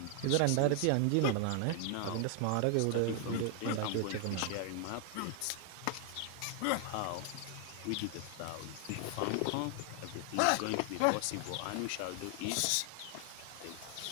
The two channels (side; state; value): both; different; correlation 0.00